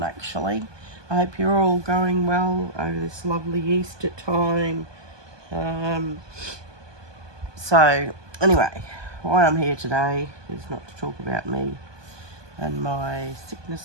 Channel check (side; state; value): left; late; 1.2 ms